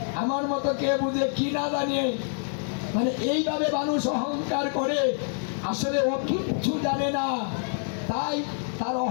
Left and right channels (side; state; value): right; silent; digital silence